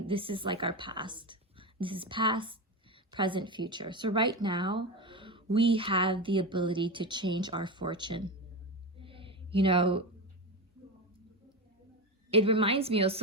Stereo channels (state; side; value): normal; both; correlation 0.18